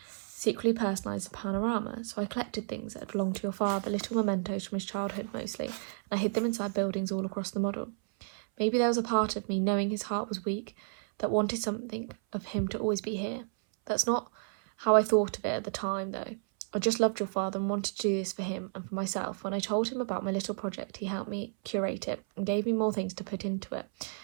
secretly personalise the panorama, so I collected things that belonged to your father, little mementos from his childhood mostly, and I hid them inside buildings all across the model. Maybe there was a part of me, knowing his heart was weak, that wanted something of him to always be here. That's not how I thought of it at the time, though. I just loved your father and wanted to do this for him and for myself. When I told him about my little project, he helped me curate it and gave me more things to put into it.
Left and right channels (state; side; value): silent; left; 57 dB below the other